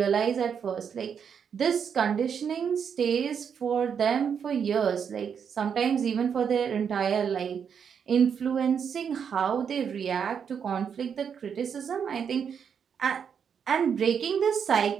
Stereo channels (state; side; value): quieter; left; 7.2 dB